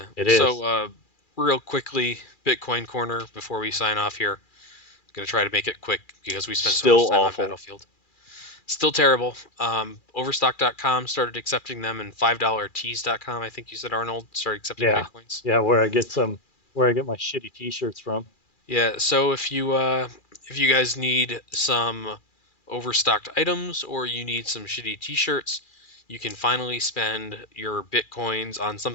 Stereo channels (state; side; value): late; right; 2.4 ms